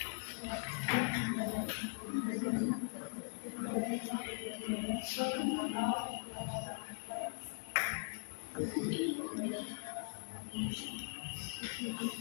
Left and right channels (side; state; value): right; silent; digital silence